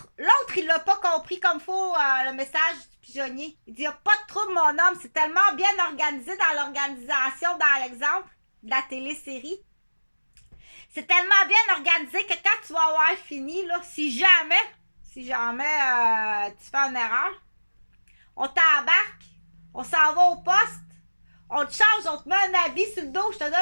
il l'a pas compris comme faut le message du pigeonnier. Il dit, il n'y a pas de trouble, mon homme. C'est tellement bien organisé dans l'organisation, dans l'exemple de la télésérie. C'est tellement bien organisé que quand tu vas avoir fini, là, si jamais tu fais une erreur, on t'embarque, on s'en va au poste, on te change, on te met un habit sur le dos, je te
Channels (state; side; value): inverted; both; correlation -1.00